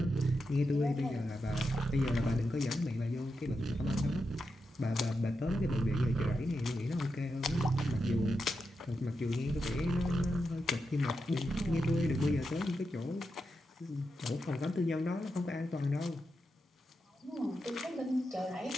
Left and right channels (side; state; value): both; normal; correlation 0.87